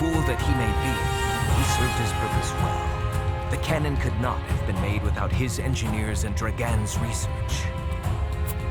that he may be, he served his purpose well. The cannon could not have been made without his engineers and Dragan's research.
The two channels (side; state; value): both; identical; correlation 1.00